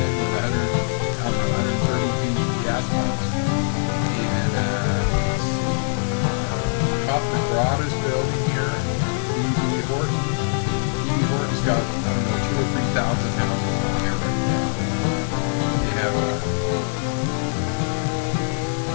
with 132 gas pumps, and let's see, Coachmen Concord is building here, and D.B. Horton. D.B. Horton's got, I don't know, 2,000 or 3,000 houses going here right now. They have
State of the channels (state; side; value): silent; right; 64 dB below the other